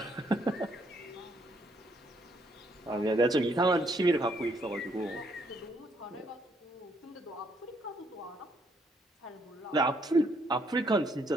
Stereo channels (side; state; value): both; normal; correlation 0.70